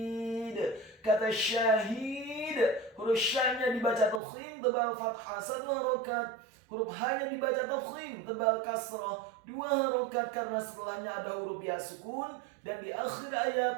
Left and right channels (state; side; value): drops out; left; at 4.2 s